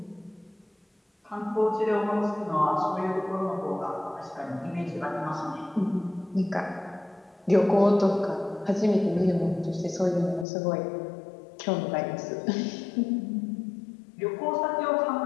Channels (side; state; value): right; drops out; at 10.5 s